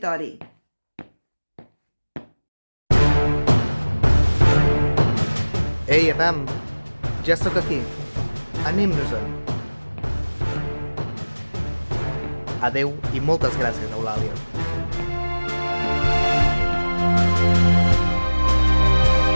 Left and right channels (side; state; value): both; inverted; correlation -1.00